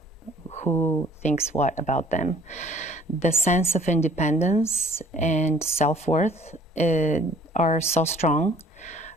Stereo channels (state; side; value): normal; both; correlation 0.55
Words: who thinks what about them. The sense of independence and self-worth are so strong